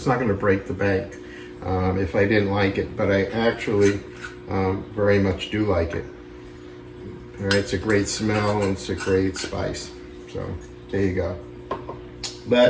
not going to break the bank if I didn't like it, but I actually very much do like it. All right, it's a great smell and it's a great spice. So there you go.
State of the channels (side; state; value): both; identical; correlation 1.00